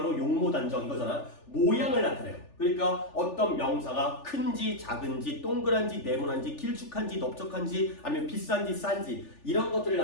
용모단정 이거잖아. 모양을 나타내요. 그러니까 어떤 명사가 큰지 작은지 동그란지 네모난지 길쭉한지 넓적한지 아니면 비싼지 싼지 이런 것들을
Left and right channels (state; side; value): late; right; 3.4 ms